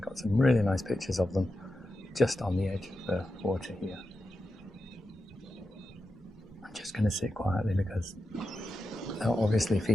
some really nice pictures of them just on the edge of the water here. I'm just going to sit quietly because they're obviously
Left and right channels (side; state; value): both; normal; correlation 0.89